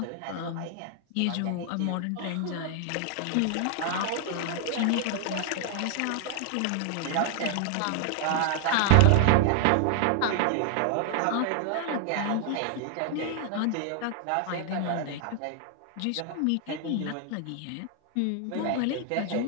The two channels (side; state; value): both; different; correlation 0.00